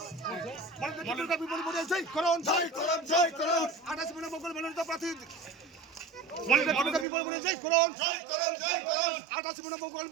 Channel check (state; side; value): drops out; left; at 7.1 s